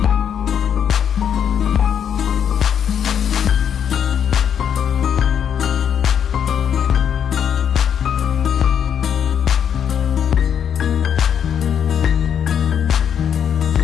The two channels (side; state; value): right; quieter; 8.4 dB